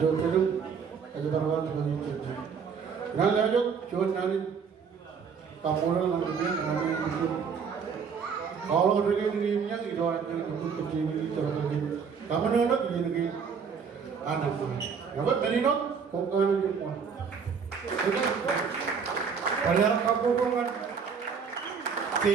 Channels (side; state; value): left; quieter; 6.2 dB